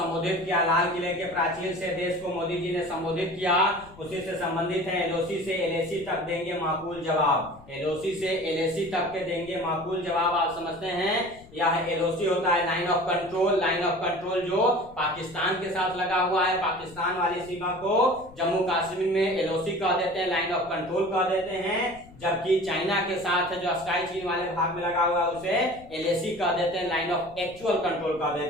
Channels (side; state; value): left; noise; rumble, 21 dB below the sound